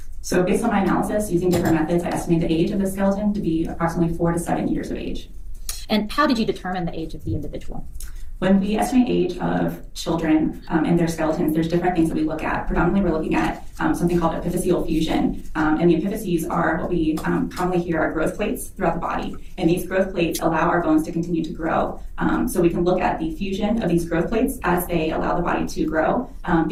So based on my analysis, using different methods, I estimate the age of the skeleton to be approximately 4 to 7 years of age. And how did you determine the age of the individual? When we estimate age of children and their skeletons, there's different things that we look at. Predominantly, we're looking at something called epiphyseal fusion. And the epiphyses are what we commonly hear are growth plates throughout the body. And these growth plates allow our bones to continue to grow. So we can look at the fusion of these growth plates as they allow the body to grow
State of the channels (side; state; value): both; identical; correlation 1.00